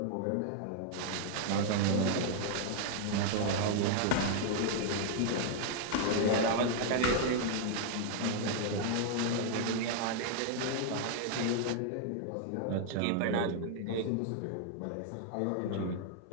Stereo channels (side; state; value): both; different; correlation 0.00